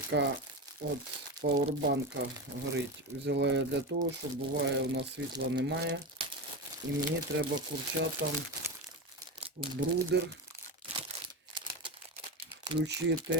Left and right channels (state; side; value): normal; both; correlation 0.20